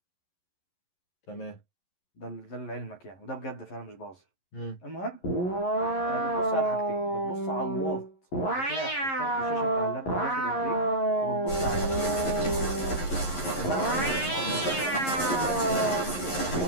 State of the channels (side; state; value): right; late; 11 ms